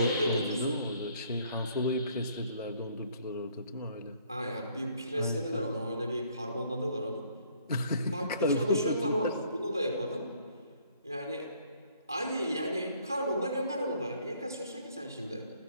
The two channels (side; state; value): both; inverted; correlation -0.62